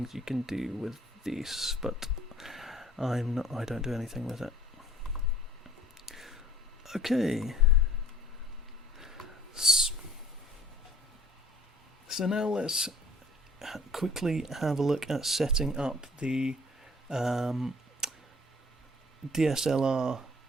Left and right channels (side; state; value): both; normal; correlation 0.55